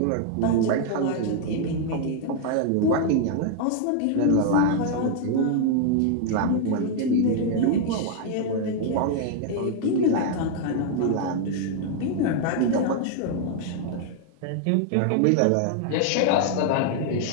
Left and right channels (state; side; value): different; both; correlation 0.00